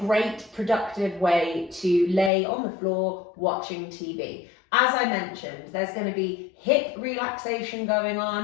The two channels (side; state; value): right; drops out; at 2.3 s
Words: productive way to lay on the floor watching TV. As I mentioned, there's going to be hip relaxation going